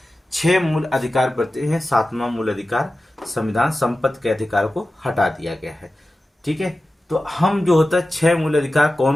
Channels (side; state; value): both; normal; correlation 0.94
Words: 6 मूल अधिकार बढ़ते हैं, 7वां मूल अधिकार संविधान संपत्ति के अधिकार को हटा दिया गया है। ठीक है, तो हम जो होता है 6 मूल अधिकार